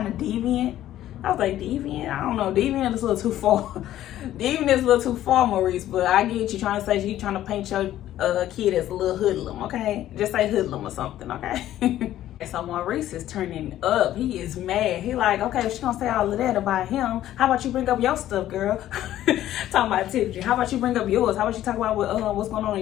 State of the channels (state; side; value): quieter; right; 13.0 dB